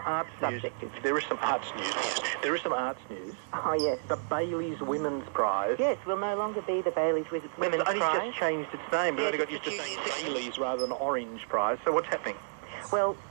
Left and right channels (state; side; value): silent; left; digital silence